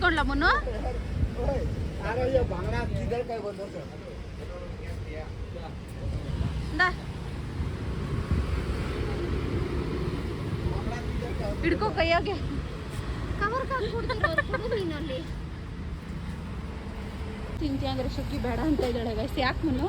ಮುನ್ನು. ಹಿಡ್ಕೋ ಕೈಯಾಗೆ ಕವರ್ ನೀನಲ್ಲಿ ತಿಂತೀಯ ಅಂದ್ರೆ ಶುಕ್ಕಿ ಬೇಡ ಅಂತ ಇದ್ದಾಳೆ ಗೈಸ್. ಯಾಕೆ ಮುನ್ನು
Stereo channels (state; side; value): identical; both; correlation 1.00